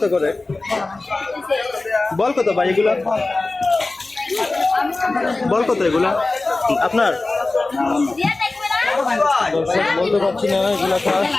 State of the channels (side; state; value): right; quieter; 3.2 dB